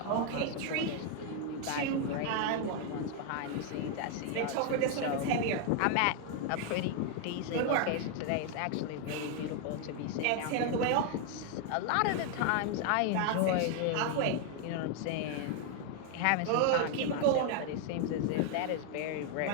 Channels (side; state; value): both; different; correlation 0.00